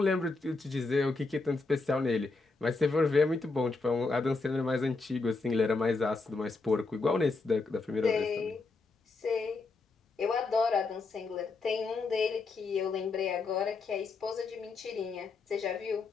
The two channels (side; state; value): right; quieter; 3.9 dB